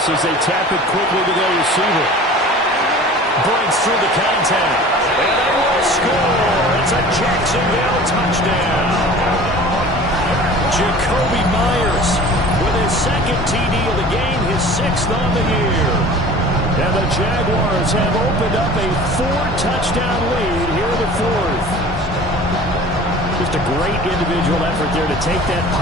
as they tap it quickly to their receiver. Breaks through the contact. And they will score. It's a Jacksonville touchdown. Jacoby Myers with his 2nd TD of the game, his 6th on the year. And the Jaguars have opened up a 4-touchdown lead here in the 4th. Just a great individual effort there to take that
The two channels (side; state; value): both; normal; correlation 0.42